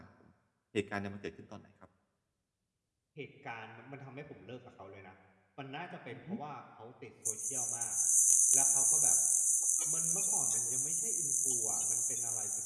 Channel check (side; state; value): both; identical; correlation 1.00